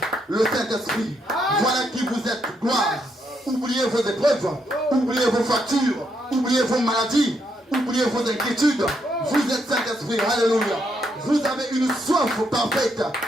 Le Saint-Esprit. Voilà qui vous êtes. Gloire. Oubliez vos épreuves. Oubliez vos factures. Oubliez vos maladies. oubliez vos inquiétudes. Vous êtes Saint-Esprit. Alléluia. Vous avez une soif parfaite,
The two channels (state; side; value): normal; both; correlation 0.77